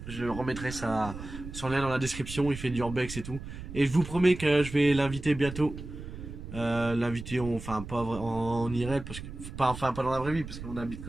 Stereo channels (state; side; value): noise; right; rumble, 11 dB below the sound